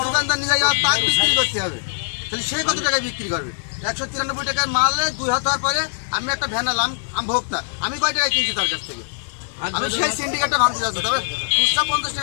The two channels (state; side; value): silent; right; digital silence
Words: দোকানদার নিয়ে যাওয়া তার বিক্রি করতে হবে তাহলে সে কত টাকায় বিক্রি করবে 193 টাকার মালে 2 হাত হওয়ার পরে আমি একটা ভ্যান আলাম আমি ভোক্তা আমি কয় টাকায় কিনছি তার কাছ থেকে আমি সেই সিন্ডিকেটটা ভাঙতে যাচ্ছি তবে খুচরা 50